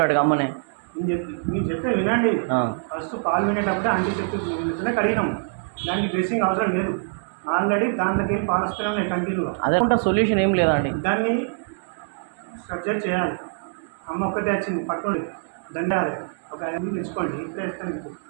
అమ్మనే. మీరు చెప్తే వినండి. ఫస్ట్ పాలు వినేటప్పుడే యాంటీసెప్టిక్తోనే కడిగినాం. దానికి డ్రెస్సింగ్ అవసరం లేదు. ఆల్రెడీ దాంట్లోకి వెళ్ళి పాలు వస్తూనే ఉన్నాయి కంటిన్యూగా. అదే సొల్యూషన్ ఏం లేదండి. దాన్ని సర్జరీ చేయాలి. అమ్మ ఒక్కటే వచ్చింది పట్టుకోండి దండాలి ఒక 5 తెచ్చుకోండి ఇప్పుడే వేస్తాను.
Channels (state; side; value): silent; left; digital silence